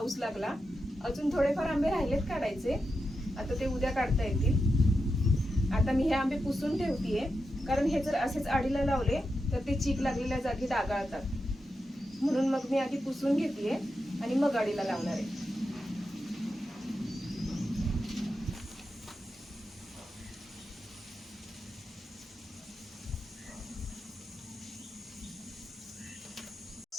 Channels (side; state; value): both; normal; correlation 0.88